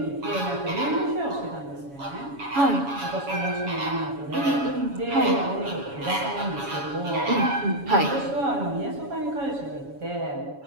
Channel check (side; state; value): left; late; 7.2 ms